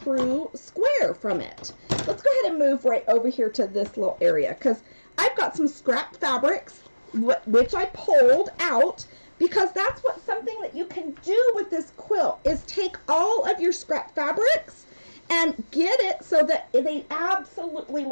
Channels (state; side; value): inverted; both; correlation -1.00